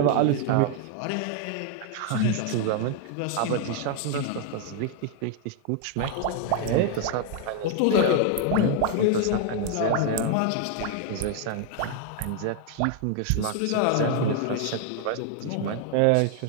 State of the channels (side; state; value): both; different; correlation 0.01